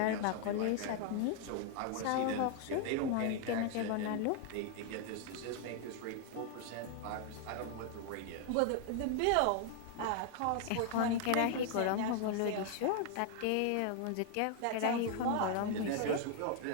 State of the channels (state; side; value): different; both; correlation 0.00